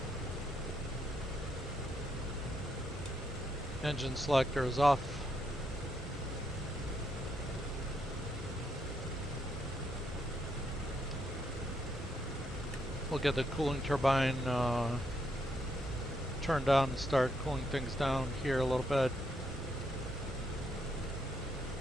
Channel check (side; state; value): both; normal; correlation 0.78